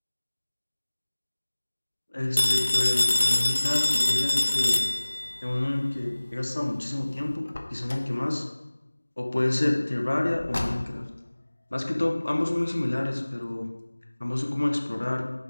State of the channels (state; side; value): inverted; both; correlation -1.00